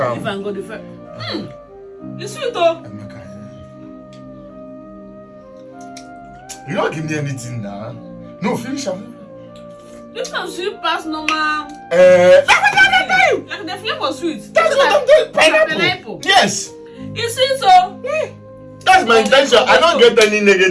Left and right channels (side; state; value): both; identical; correlation 1.00